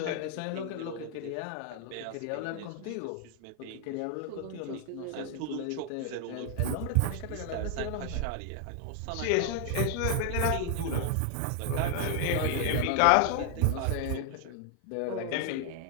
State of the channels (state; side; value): different; both; correlation 0.00